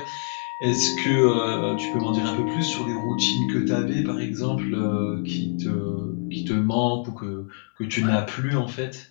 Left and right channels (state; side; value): silent; right; 62 dB below the other